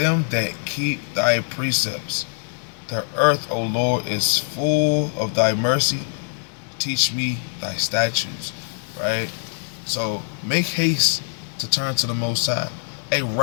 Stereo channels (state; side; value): silent; right; 63 dB below the other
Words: that keep thy precepts. The earth, O Lord, is full of thy mercy. Teach me thy statutes. Right? So make haste to turn to the Most High. Hey,